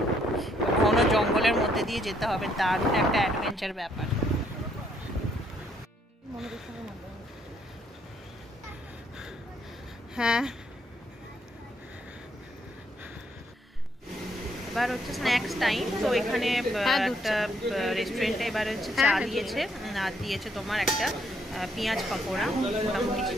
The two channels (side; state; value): both; normal; correlation 0.70